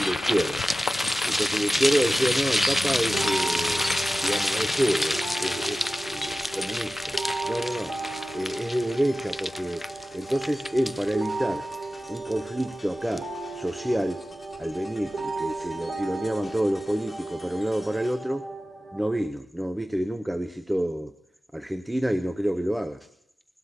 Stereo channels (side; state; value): both; normal; correlation 0.95